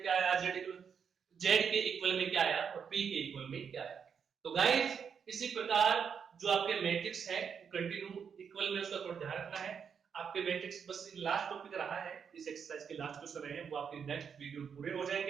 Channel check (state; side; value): quieter; left; 6.9 dB